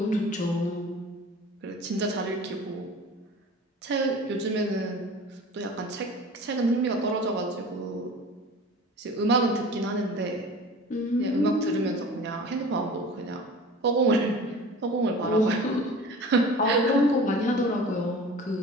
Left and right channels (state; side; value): normal; both; correlation 0.40